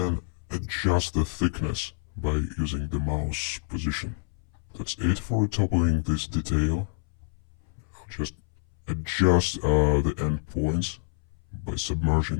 adjust the thickness by using the mouse position. That's it for toppling this detail. I'll just adjust the endpoints by submerging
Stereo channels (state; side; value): silent; right; 60 dB below the other